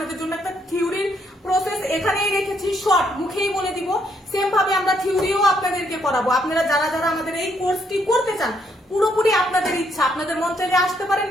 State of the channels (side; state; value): both; normal; correlation 0.73